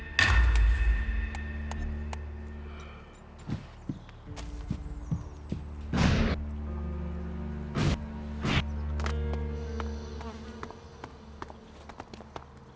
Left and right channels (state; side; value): identical; both; correlation 1.00